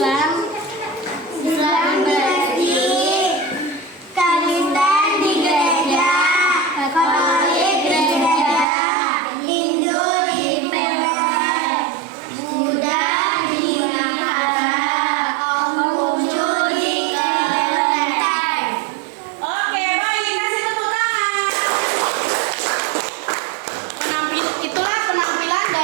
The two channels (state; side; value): drops out; left; at 8.7 s